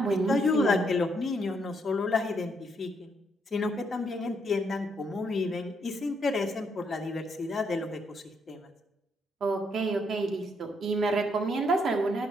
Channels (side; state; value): both; normal; correlation 0.74